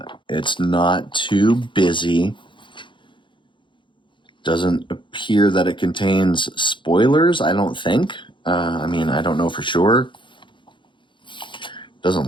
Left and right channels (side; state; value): right; late; 0.23 ms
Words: It's not too busy. Doesn't appear that it contains spoilers, I don't think. I mean, I don't know for sure.